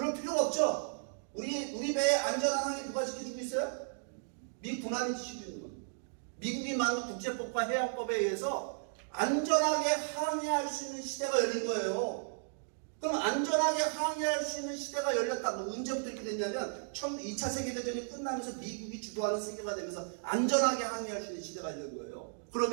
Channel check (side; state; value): left; silent; digital silence